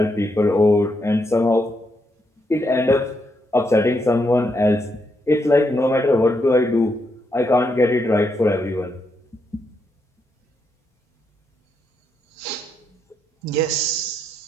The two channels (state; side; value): normal; both; correlation 0.80